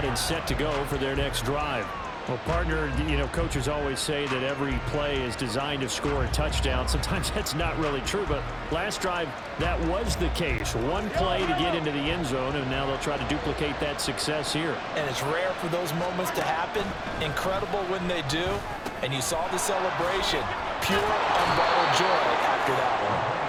and set to go for their next drive. Well, partner, coaches always say that every play is designed to score a touchdown. Sometimes that's not really true, but last drive, that was the case. One play to get into the end zone, and now they'll try to duplicate that success here. And it's rare for those moments to happen. Incredible when they do. And you saw the celebration. Pure, unbridled joy after that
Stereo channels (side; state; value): both; identical; correlation 1.00